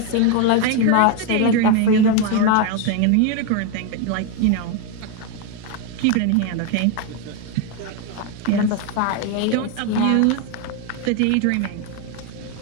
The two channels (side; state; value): both; different; correlation 0.01